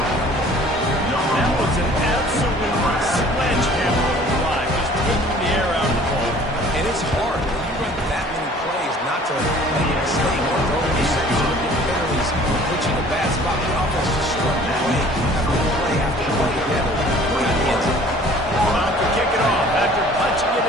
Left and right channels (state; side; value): normal; both; correlation 0.51